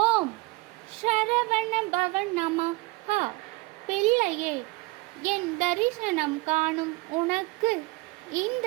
ஓம் சரவண பவன் நமஹ. பிள்ளையே, என் தரிசனம் காணும் உனக்கு இந்த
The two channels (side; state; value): left; quieter; 23.6 dB